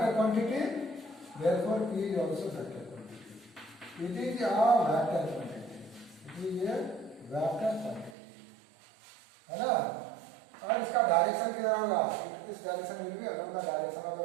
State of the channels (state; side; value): drops out; left; at 8.2 s